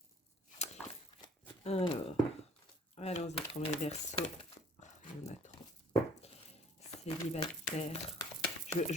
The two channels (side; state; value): both; normal; correlation 0.54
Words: Alors, allons-y pour mes Verseaux. Il y en a trop. Célibataire.